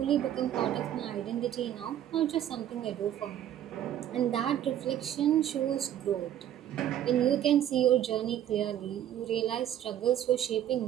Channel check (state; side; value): quieter; left; 11.1 dB